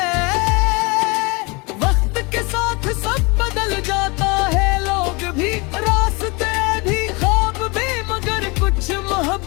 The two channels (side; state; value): right; quieter; 27.6 dB